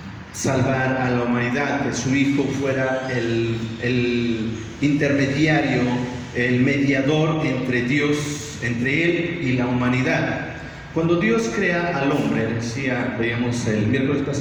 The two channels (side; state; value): both; identical; correlation 1.00